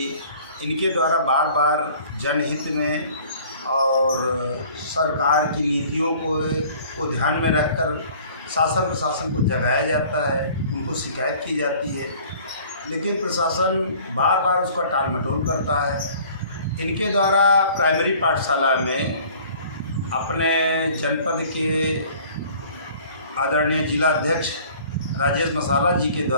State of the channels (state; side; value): inverted; both; correlation -0.51